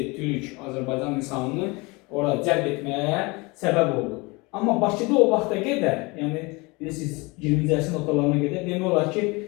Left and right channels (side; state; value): right; quieter; 26.0 dB